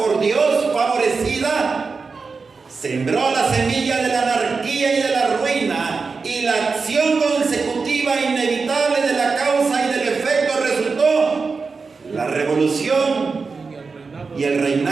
Dios, favorecida, sembró la semilla de la anarquía y de la ruina, y la acción consecutiva inevitable de la causa y del efecto resultó la revolución y el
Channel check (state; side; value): quieter; left; 4.6 dB